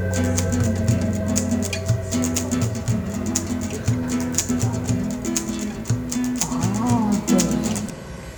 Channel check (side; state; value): both; identical; correlation 1.00